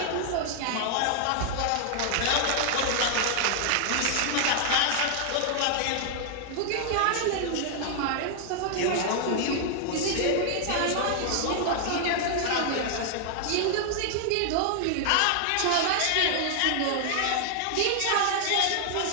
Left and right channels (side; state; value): both; different; correlation 0.00